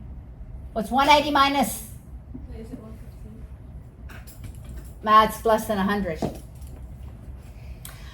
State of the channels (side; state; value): both; identical; correlation 1.00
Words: What's 180 minus? Is it 115? That's less than 100.